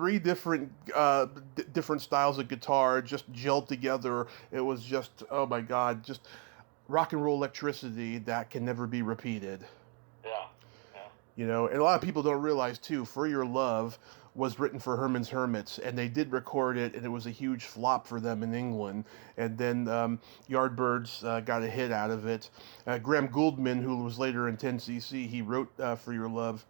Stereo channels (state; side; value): quieter; left; 34.5 dB